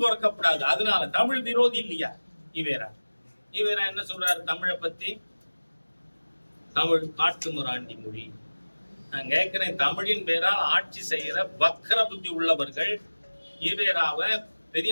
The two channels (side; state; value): both; inverted; correlation -1.00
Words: அதனால தமிழ் விரோதி இல்லையா ஈவேரா? ஈவேரா என்ன சொல்றாரு தமிழை பத்தி? தமிழ் காட்டுமிராண்டி மொழி. நான் கேட்கிறேன், தமிழின் பேரால் ஆட்சி செய்யற வக்கர புத்தி உள்ளவர்கள் ஈவேராவை